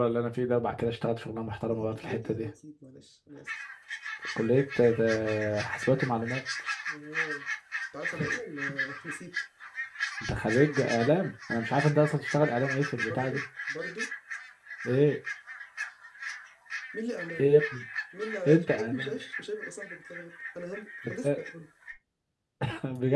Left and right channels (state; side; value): identical; both; correlation 1.00